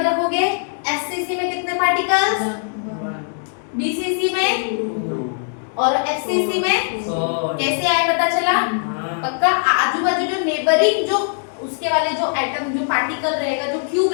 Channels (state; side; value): silent; right; 65 dB below the other